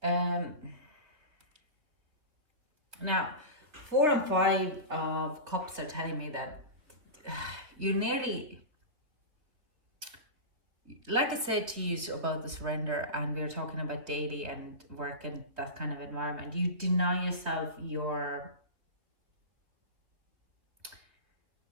Yeah. Now, 4 and 5 of Cups are telling me that you nearly, like I said to you about the surrender, and we were talking about daily and work and that kind of environment, you deny yourself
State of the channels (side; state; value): left; late; 3.2 ms